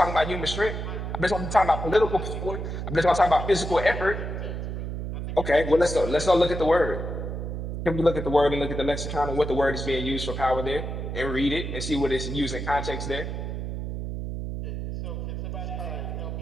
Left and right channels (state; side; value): noise; right; hum, 5 dB below the sound